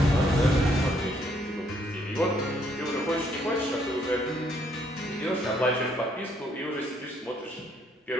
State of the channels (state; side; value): normal; both; correlation 0.69